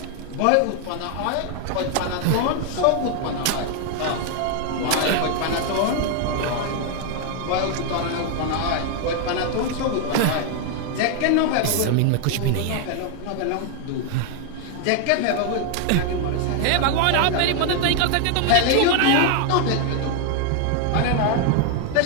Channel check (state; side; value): different; both; correlation 0.00